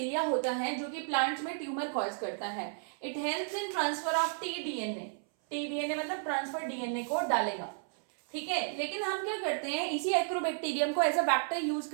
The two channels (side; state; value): left; silent; 56 dB below the other